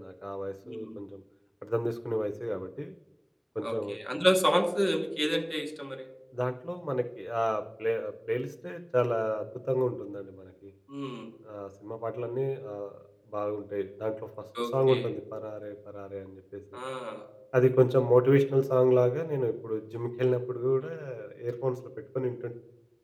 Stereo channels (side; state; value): both; identical; correlation 1.00